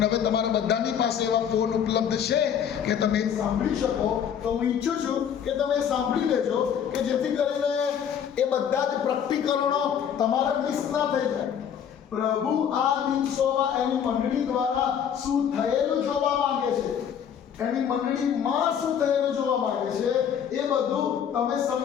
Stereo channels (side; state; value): right; quieter; 8.4 dB